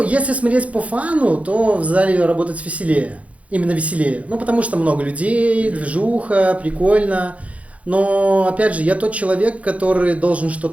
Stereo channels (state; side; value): late; left; 0.065 ms